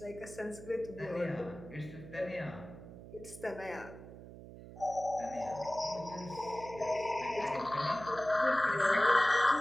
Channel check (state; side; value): noise; right; hum, 15 dB below the sound